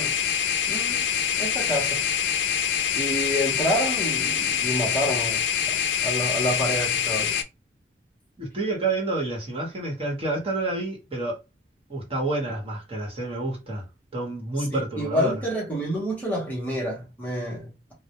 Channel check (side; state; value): right; quieter; 3.0 dB